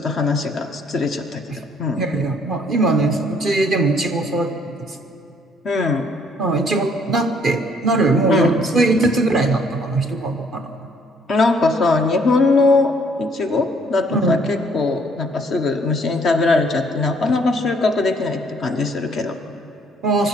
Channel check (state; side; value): normal; both; correlation 0.63